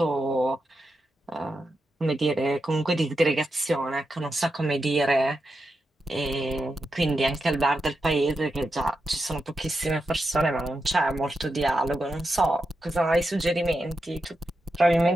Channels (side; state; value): both; normal; correlation 0.88